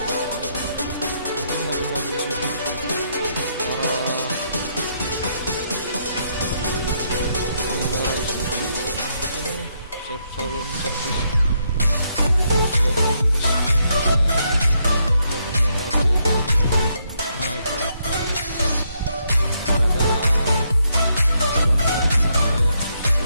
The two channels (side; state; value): both; inverted; correlation -0.76